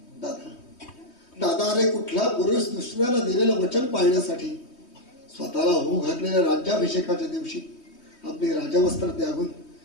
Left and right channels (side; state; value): right; late; 3.2 ms